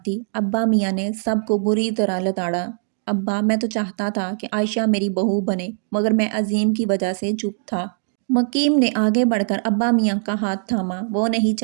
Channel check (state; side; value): silent; left; digital silence